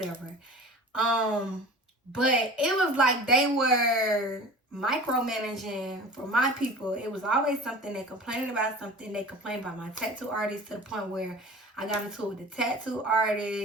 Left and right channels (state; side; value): normal; both; correlation 0.39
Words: But it was like they were micromanaging for my people. It was always something. They complained about something. They complained about my tattoo artist to the point where I got into it with the tattoo